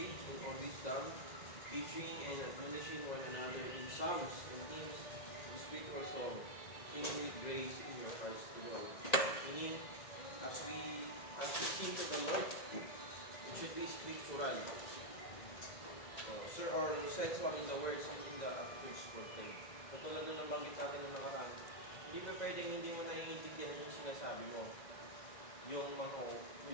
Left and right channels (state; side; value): late; right; 1.9 ms